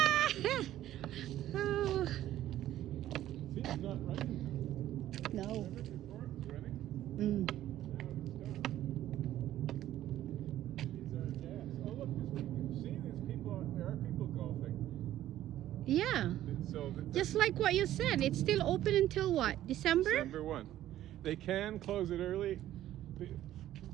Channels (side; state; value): left; quieter; 13.1 dB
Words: Oh, See, it's not running. no. Remember before it was running? Mm. Now it's stopped. These are gas. Oh look, see, there are people golfing. Yeah, So just like what you said, it's still open until what? December? December 1. They can close it early